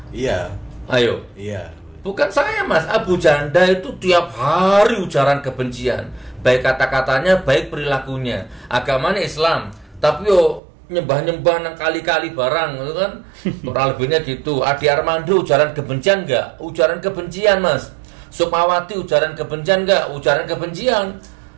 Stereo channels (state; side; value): drops out; left; at 10.6 s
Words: Iya. Ayo. Iya. Bukan saya Mas, Abu Janda itu tiap hari ujaran kebencian, baik kata-katanya, baik perilakunya. Agamanya Islam, tapi yo nyembah-nyembah nang kali-kali barang gitu kan. Kurang lebihnya gitu. Adi Armando ujaran kebencian enggak? Ujaran kebencian Mas. Sukmawati ujaran kebencian enggak? Ujaran kebencian.